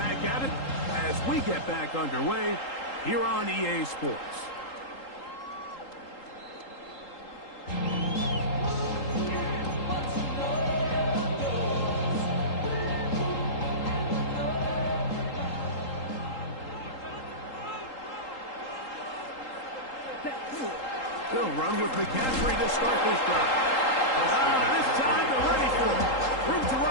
at it as we get back underway here on EA Sports. They'll run with McCaffrey to start this drive. This time they're ready for it. Room to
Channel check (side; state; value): right; late; 3.8 ms